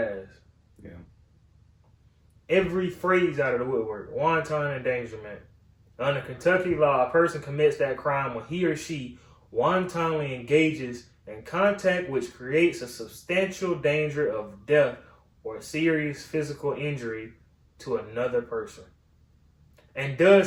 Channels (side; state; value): both; identical; correlation 1.00